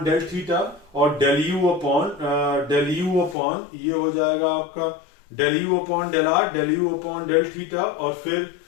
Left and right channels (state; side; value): drops out; right; at 3.4 s